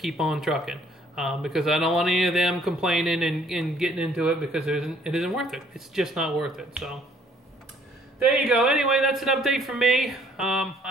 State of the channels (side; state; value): both; normal; correlation 0.61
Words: on trucking. Because I don't want any of them complaining and getting into it because it isn't worth it. It's just not worth it. So there you go. Anyway, that's an update from me.